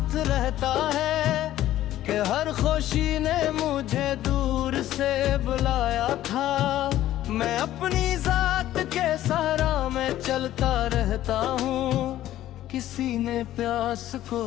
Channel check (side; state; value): right; quieter; 13.6 dB